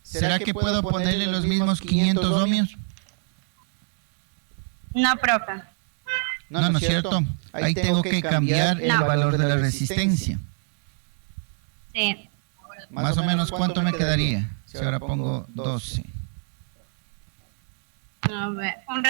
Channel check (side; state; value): left; silent; 61 dB below the other